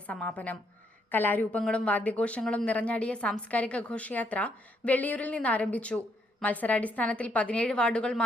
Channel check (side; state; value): both; normal; correlation 0.74